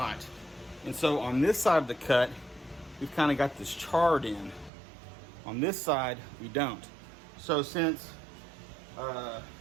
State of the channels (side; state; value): left; drops out; at 4.7 s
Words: And so on this side of the cut, we've kind of got this charred in. On this side, we don't. So since, for